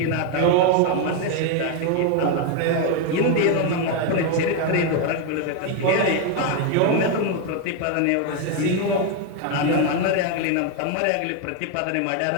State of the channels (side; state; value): both; different; correlation 0.01